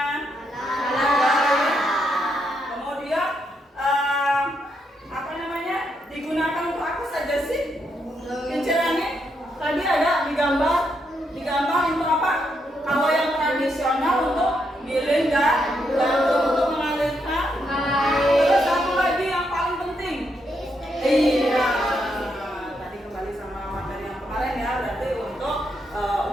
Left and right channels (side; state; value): both; normal; correlation 0.79